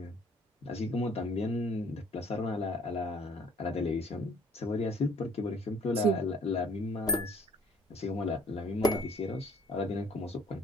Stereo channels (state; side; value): normal; both; correlation 0.57